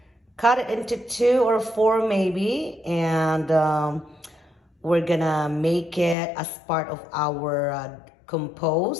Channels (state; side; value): drops out; right; at 6.2 s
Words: cut it into 2 or 4 maybe, and we're gonna make it as part of our